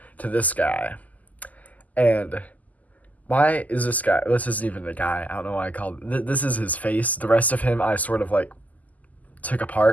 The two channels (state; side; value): late; right; 0.078 ms